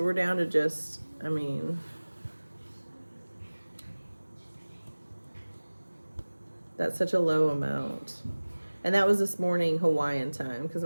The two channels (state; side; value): inverted; both; correlation -1.00